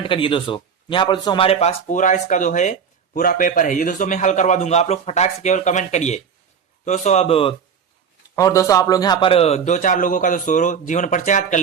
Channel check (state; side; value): quieter; left; 6.9 dB